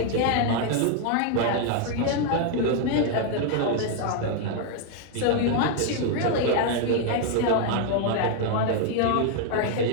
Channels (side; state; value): both; different; correlation 0.00